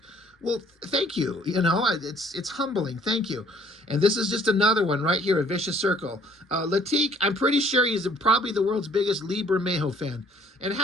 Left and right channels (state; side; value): normal; both; correlation 0.59